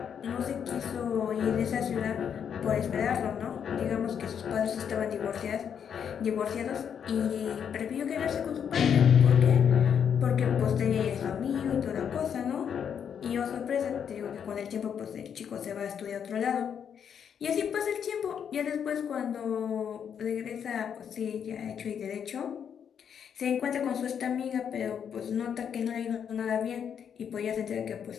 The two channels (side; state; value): right; quieter; 7.9 dB